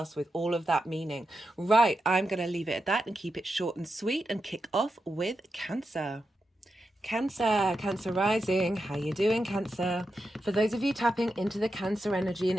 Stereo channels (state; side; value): normal; both; correlation 0.88